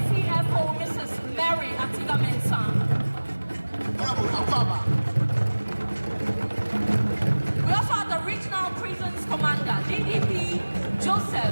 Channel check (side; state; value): both; inverted; correlation -1.00